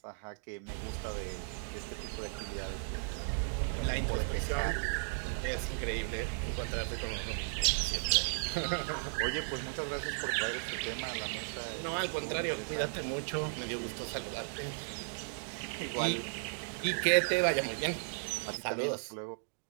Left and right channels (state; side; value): silent; left; digital silence